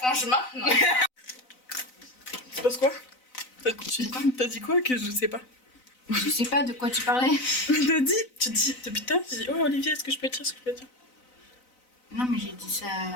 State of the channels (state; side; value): late; right; 4.0 ms